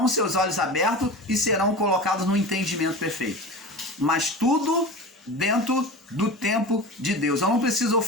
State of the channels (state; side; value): normal; both; correlation 0.31